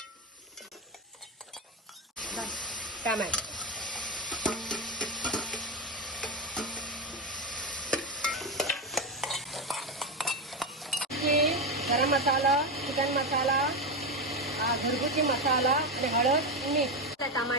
टमाटर, गरम मसाला, चिकन मसाला, घरगुती मसाला आणि हळद, मीठ,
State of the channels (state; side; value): normal; both; correlation 0.12